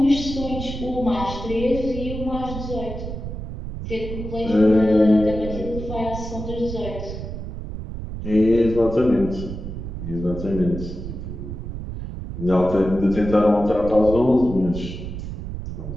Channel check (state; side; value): noise; right; rumble, 8 dB below the sound